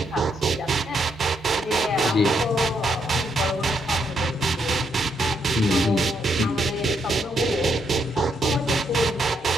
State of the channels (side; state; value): both; normal; correlation 0.77